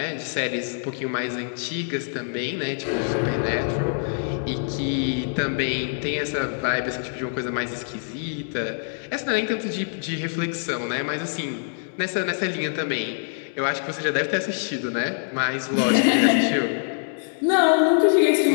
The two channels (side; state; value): right; silent; digital silence